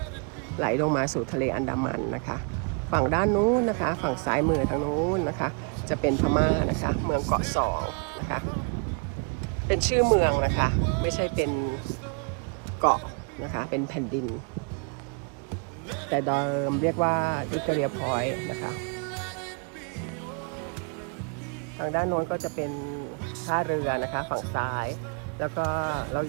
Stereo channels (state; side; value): quieter; left; 38.6 dB